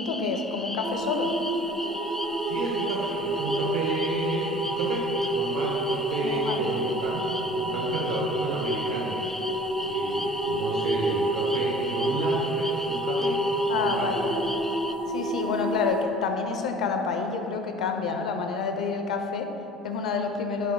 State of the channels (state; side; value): normal; both; correlation 0.46